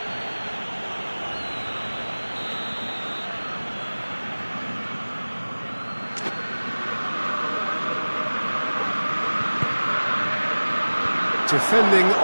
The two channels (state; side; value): inverted; both; correlation -1.00